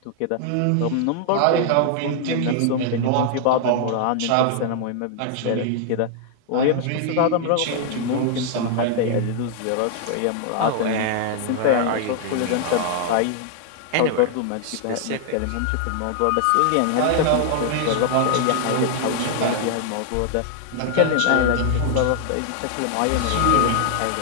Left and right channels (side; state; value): both; different; correlation -0.01